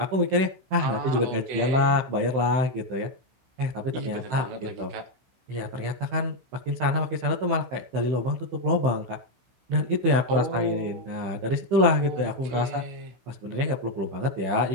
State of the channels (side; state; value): left; late; 15 ms